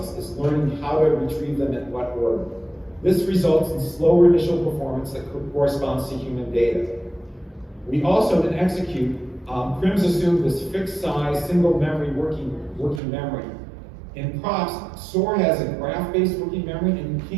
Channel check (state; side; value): drops out; left; at 13.0 s